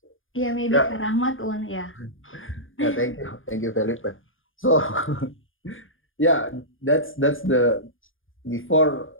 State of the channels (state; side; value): late; right; 0.58 ms